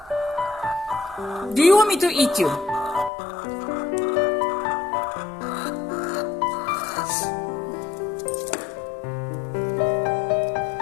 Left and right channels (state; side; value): drops out; right; at 3.1 s